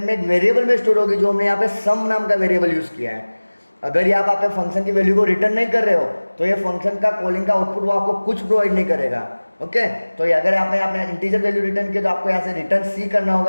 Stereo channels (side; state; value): both; inverted; correlation -1.00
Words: में एक वेरिएबल में स्टोर होगी, जो हमने यहाँ पे सम नाम का वेरिएबल यूज किया है। अगर ये आप फंक्शन की वैल्यू को रिटर्न नहीं कर रहे हो तो ये फंक्शन का कॉलिंग का आउटपुट वो आपको कुछ प्रोवाइड नहीं करेगा। ओके, तो ये अगर आपने आपने इंटीजर वैल्यू रिटर्न किया तो आपको यहाँ से रिटर्न सी करना